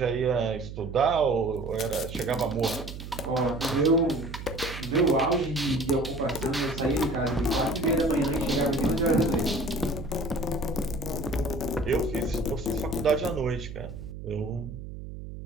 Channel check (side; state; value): right; noise; hum, 10 dB below the sound